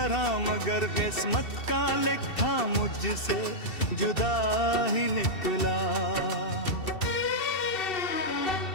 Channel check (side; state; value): right; late; 2.7 ms